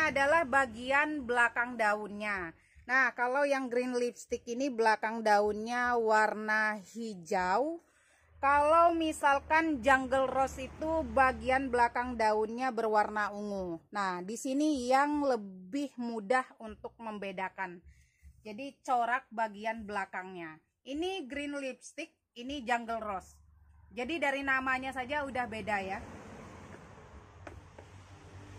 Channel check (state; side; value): identical; both; correlation 1.00